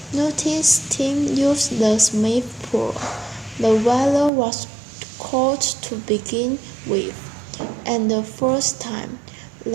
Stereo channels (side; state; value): left; drops out; at 4.3 s